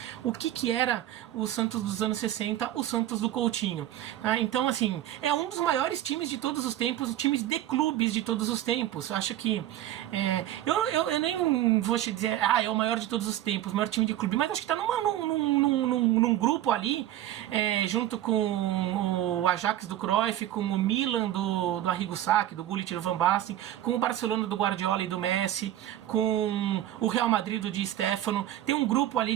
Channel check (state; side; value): quieter; left; 13.0 dB